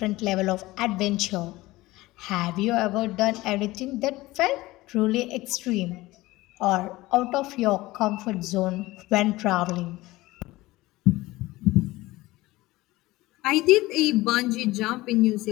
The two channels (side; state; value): right; quieter; 19.1 dB